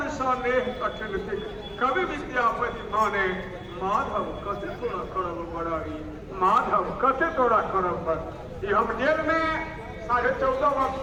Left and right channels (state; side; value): identical; both; correlation 1.00